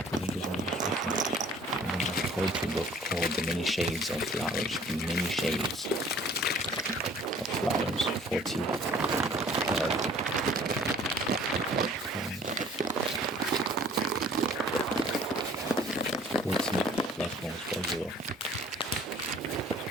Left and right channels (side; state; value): both; normal; correlation 0.52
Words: Poetry book called The Many Shades of Flowers. The Many Shades of Flowers. 40 platforms for you.